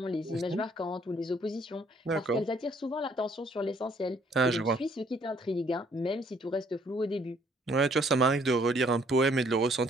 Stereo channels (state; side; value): normal; both; correlation 0.63